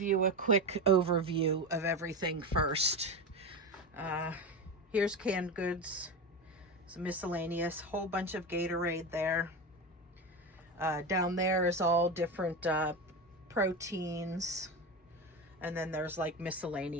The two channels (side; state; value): both; normal; correlation 0.20